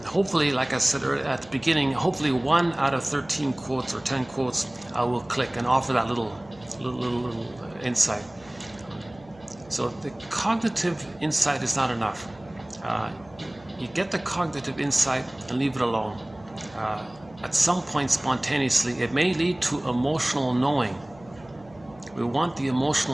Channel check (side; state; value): right; noise; hum, 24 dB below the sound